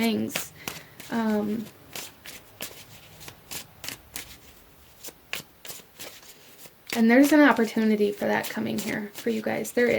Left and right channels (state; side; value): identical; both; correlation 1.00